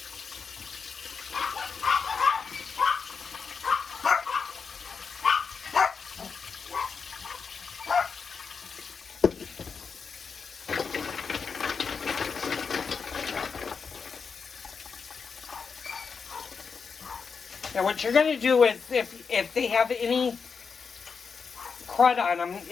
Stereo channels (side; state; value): right; quieter; 5.6 dB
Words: Now what you're going to do is, if they have any crud on them,